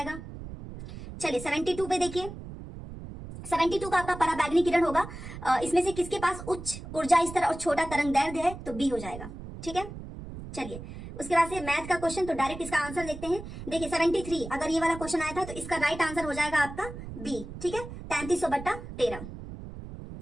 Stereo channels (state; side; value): noise; right; rumble, 11 dB below the sound